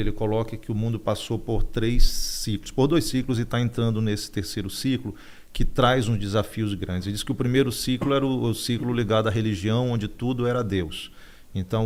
ele coloca que o mundo passou por 2 ciclos, e está entrando nesse terceiro ciclo, que traz uns desafios grandes. Ele diz que o primeiro ciclo era o ciclo ligado à religião, onde tudo era Deus.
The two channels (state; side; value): identical; both; correlation 1.00